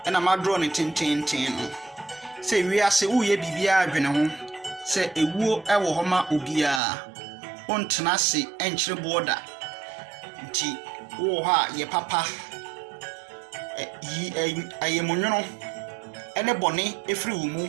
ena ma draw ne tententen no se wiase uye bibia adwene ho se ewuo ewo ho ma obia ontena se enkyere boda nti wo ha ye papa ayemonwono ene bone efri wo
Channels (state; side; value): drops out; left; at 6.8 s